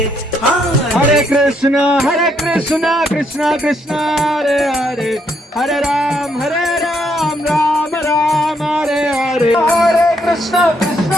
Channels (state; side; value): normal; both; correlation 0.73